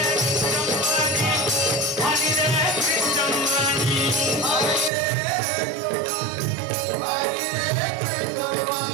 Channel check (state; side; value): drops out; left; at 4.9 s